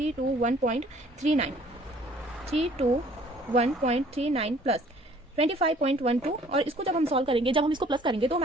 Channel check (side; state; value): both; normal; correlation 0.56